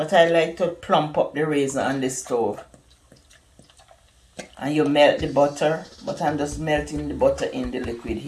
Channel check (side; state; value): both; identical; correlation 1.00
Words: I like to plump up the raisin on the stove. And you melt the butter, but I'm just melting the butter in the liquid